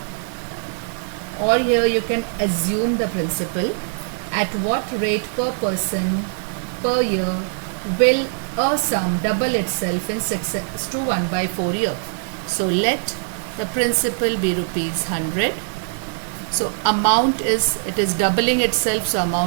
or here you can assume the principal. At what rate per person per year will a sum double itself in 6:1 by 4 year? So let the principal be rupees 100. So amount is, it is doubling itself, so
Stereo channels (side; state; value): left; silent; 59 dB below the other